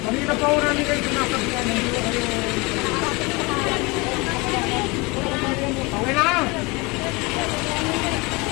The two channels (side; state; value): right; quieter; 25.9 dB